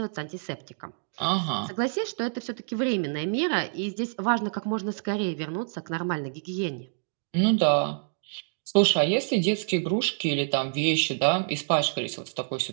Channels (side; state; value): left; silent; digital silence